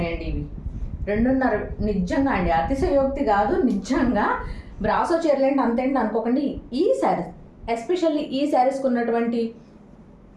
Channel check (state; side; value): identical; both; correlation 1.00